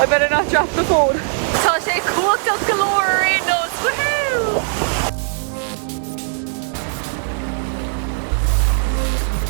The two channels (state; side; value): silent; left; digital silence